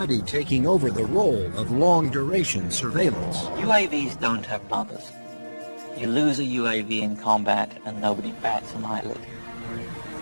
taking over the role of long-duration surveillance. UAVs don't have mothers. You lose a UAV in combat and nobody bats an eyelid.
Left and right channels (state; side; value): inverted; both; correlation -1.00